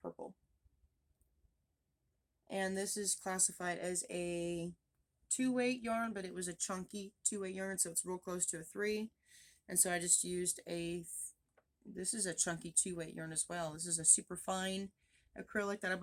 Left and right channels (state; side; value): identical; both; correlation 1.00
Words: And this is classified as a 2-weight yarn, but it was a chunky 2-weight yarn, so it's real close to a 3. And so I just used this is a chunky 2-weight yarn as well. This is a super fine acrylic that I